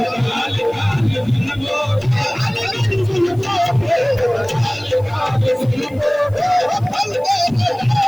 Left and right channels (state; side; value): noise; left; hiss, 29 dB below the sound